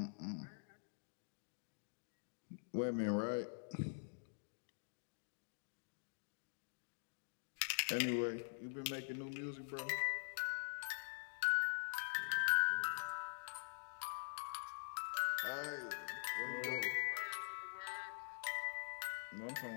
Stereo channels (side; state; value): right; silent; digital silence